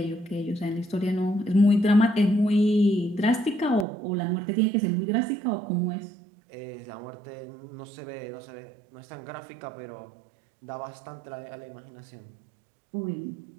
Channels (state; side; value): drops out; left; at 3.9 s